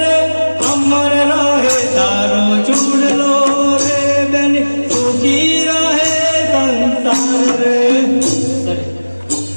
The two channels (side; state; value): both; inverted; correlation -1.00